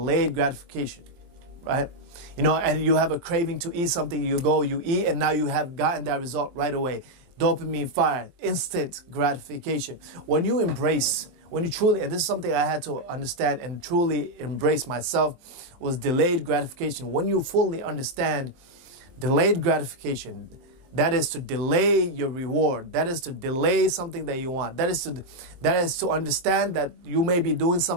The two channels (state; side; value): late; left; 23 ms